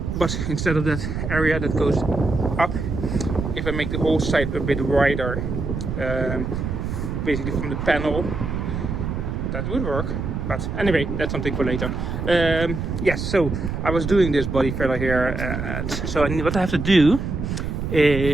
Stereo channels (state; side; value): noise; right; rumble, 3 dB below the sound